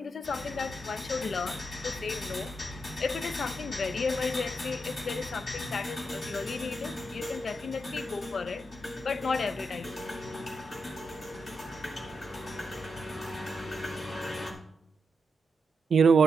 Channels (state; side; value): normal; both; correlation 0.84